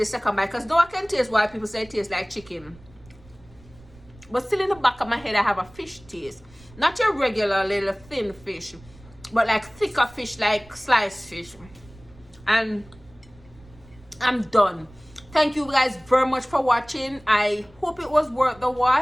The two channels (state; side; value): noise; right; rumble, 24 dB below the sound